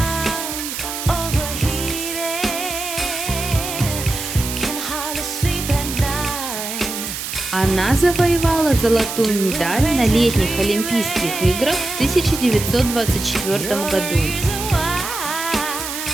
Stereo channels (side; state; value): right; noise; hiss, 6 dB below the sound